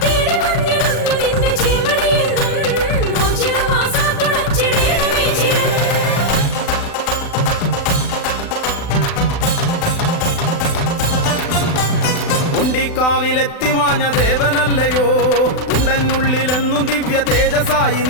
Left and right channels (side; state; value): right; late; 35 ms